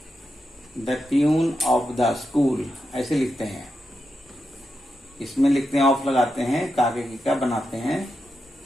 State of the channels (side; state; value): both; normal; correlation 0.87